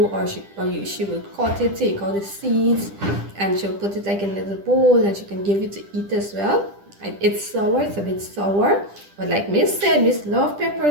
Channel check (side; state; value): left; late; 10 ms